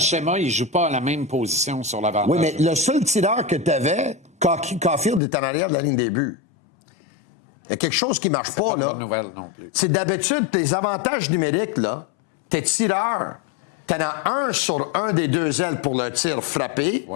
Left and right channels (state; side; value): drops out; right; at 5.2 s